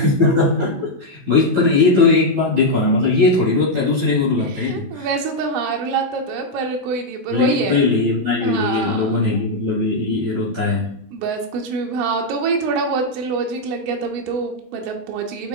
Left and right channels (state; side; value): late; left; 17 ms